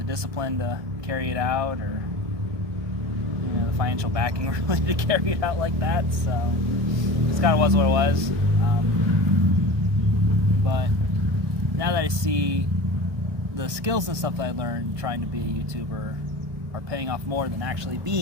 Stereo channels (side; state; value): left; late; 1.6 ms